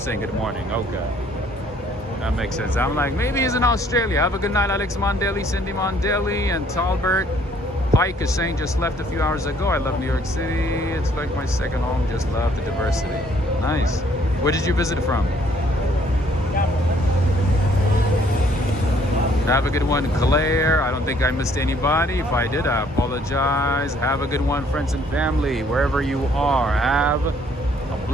good morning. Okay. That makes sense. I'm like, maybe he's in Australia. Have a good night, Alex Mondelli, Cindy Mondelli, and Talbert Pike is saying just left a few hours ago. I love New York City. It's like my second home. Just love the diversity. Nice. Where did you visit from? Have a good one, Claire. I don't think I missed anybody. If I did, I apologize. Have a good one, friends and family, wherever you are. Have a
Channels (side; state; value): both; normal; correlation 0.62